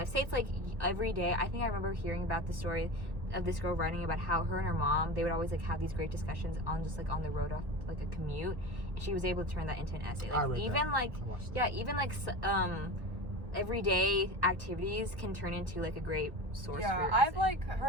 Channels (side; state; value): left; late; 1.5 ms